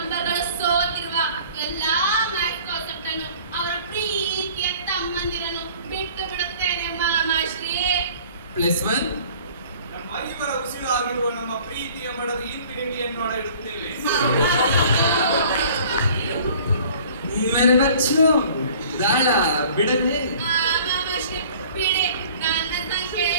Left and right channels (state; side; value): inverted; both; correlation -0.50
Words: ಸೋತಿರುವ ಎಲ್ಲಾ ಮ್ಯಾಥ್ ಕಾನ್ಸೆಪ್ಟ್ ಅನ್ನು ಅವರ ಪ್ರೀತಿಯ ತಮ್ಮಂದಿರನ್ನು ಬಿಟ್ಟು ಬಿಡುತ್ತೇನೆ ಮಾಮಾಶ್ರೀ. +1 ನಮ್ಮ ಐವರ ಉಸಿರಾಗಿರುವ ನಮ್ಮ ಪ್ರೀತಿಯ ಮಡದ ಇನ್ಫಿನಿಟಿಯನ್ನು ಇಡುತ್ತೇವೆ. ಮೇರೆ ಬಚ್ಚು ದಾಳ ಬಿಡಲೇ? ಮಾಮಾಶ್ರೀ ಬಿಡಿ. ನನ್ನ ಸಂಖ್ಯೆ